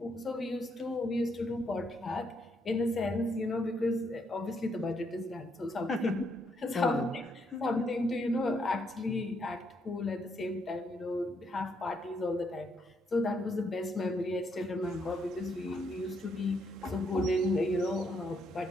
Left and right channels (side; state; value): both; normal; correlation 0.75